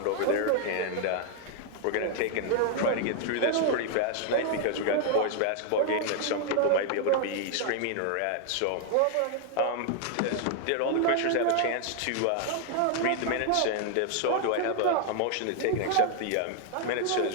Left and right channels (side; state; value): both; different; correlation 0.00